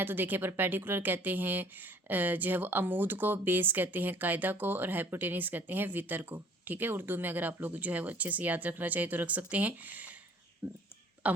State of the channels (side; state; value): both; normal; correlation 0.54